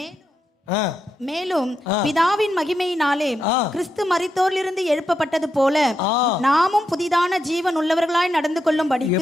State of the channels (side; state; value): both; normal; correlation 0.84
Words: மேலும் பிதாவின் மகிமையினாலே கிறிஸ்து மரித்தோரிலிருந்து எழுப்பப்பட்டது போல நாமும் புதிதான ஜீவன் உள்ளவர்களாய் நடந்து கொள்ளும்படிக்கு.